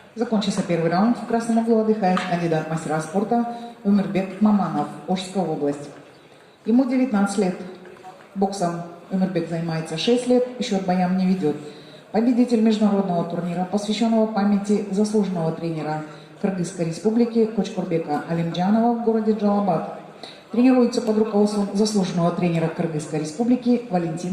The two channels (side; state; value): both; identical; correlation 1.00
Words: Закончился первый раунд. В красном углу отдыхает кандидат мастера спорта Өмірбек Маманов, Ошская область. Ему 19 лет. Боксом Өмірбек занимается 6 лет, счет боям не ведет. Победитель международного турнира, посвященного памяти заслуженного тренера Кыргызской республики Кочкурбека Алимджанова в городе Джалабад. Тренируется под руководством заслуженного тренера Кыргызской республики